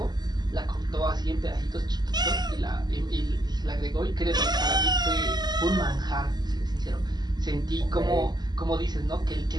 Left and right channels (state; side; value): late; left; 0.20 ms